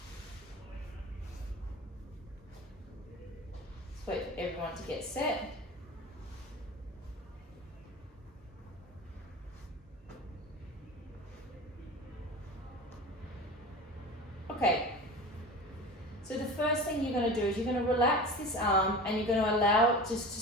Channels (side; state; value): both; normal; correlation 0.34